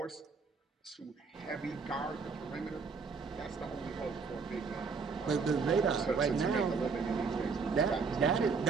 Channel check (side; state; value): left; quieter; 5.0 dB